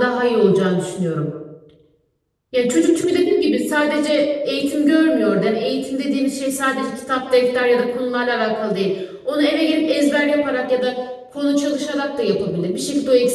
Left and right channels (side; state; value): both; identical; correlation 1.00